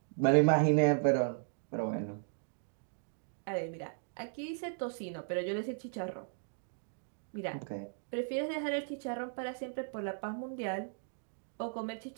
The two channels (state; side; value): silent; left; digital silence